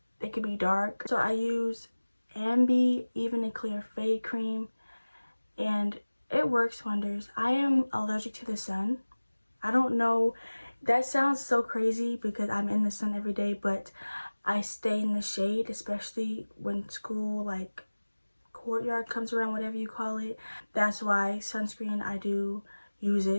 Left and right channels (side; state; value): both; inverted; correlation -1.00